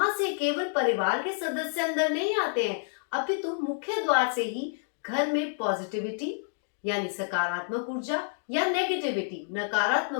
से केवल परिवार के सदस्य अंदर नहीं आते हैं, अपितु मुख्य द्वार से ही घर में पॉजिटिविटी यानी सकारात्मक ऊर्जा या नेगेटिविटी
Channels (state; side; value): silent; right; digital silence